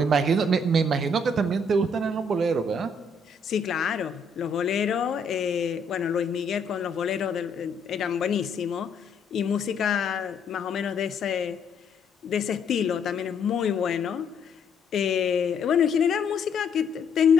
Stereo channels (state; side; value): quieter; right; 3.0 dB